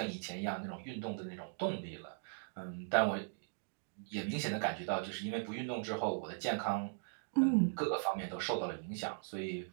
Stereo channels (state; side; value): silent; left; digital silence